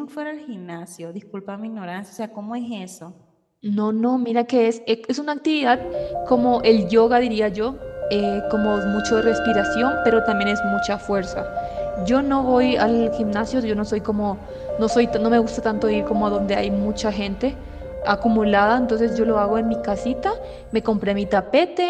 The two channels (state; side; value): identical; both; correlation 1.00